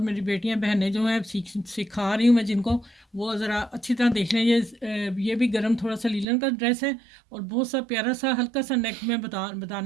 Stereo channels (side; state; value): left; drops out; at 6.2 s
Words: बेटियां बहनें जो हैं सिखा रही हूँ मैं जिनको, वो ज़रा अच्छी तरह देख लें। ये भी गरम थोड़ा सा लीलन का ड्रेस है और बहुत सा प्यारा सा हल्का सा नेक में